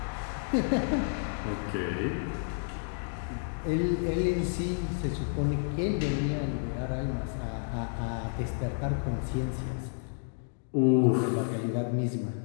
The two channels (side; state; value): right; silent; digital silence